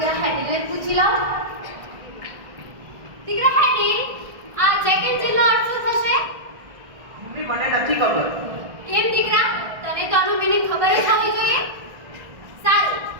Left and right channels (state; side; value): late; left; 1.6 ms